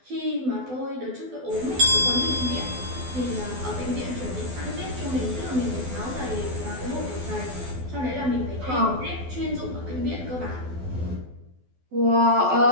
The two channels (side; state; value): left; late; 12 ms